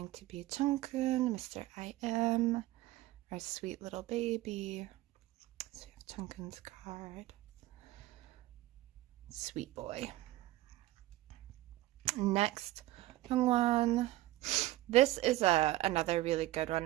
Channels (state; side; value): quieter; left; 16.8 dB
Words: to be Jungkook, Mr. I.M., our sweet little baby. So we have Jungkook's card. Sweet boy. Next, Hyungwon. This is another really good